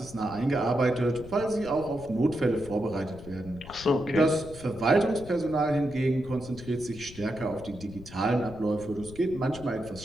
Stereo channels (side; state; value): left; noise; rumble, 16 dB below the sound